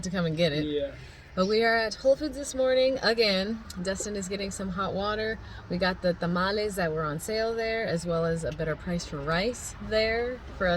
to come and get it. Yeah. But we are at Whole Foods this morning again. Dustin is getting some hot water. We got the tamales that were on sale there, as well as a better price for rice there for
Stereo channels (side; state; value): both; identical; correlation 1.00